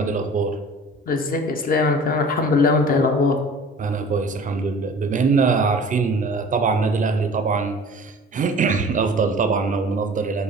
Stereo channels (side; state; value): both; normal; correlation 0.44